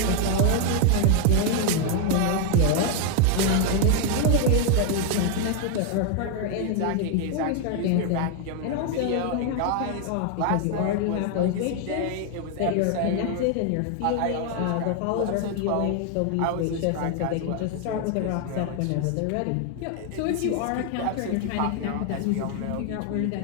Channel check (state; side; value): different; both; correlation 0.01